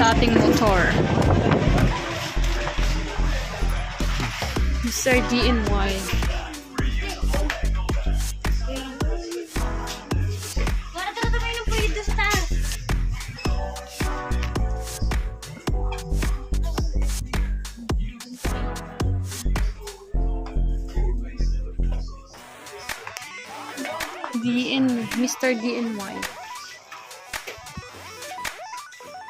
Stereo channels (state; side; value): identical; both; correlation 1.00